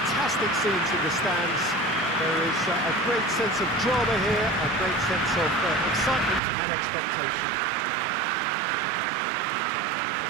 scenes in the stands. There is a great sense of drama here, a great sense of excitement and expectation.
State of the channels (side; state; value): left; drops out; at 6.4 s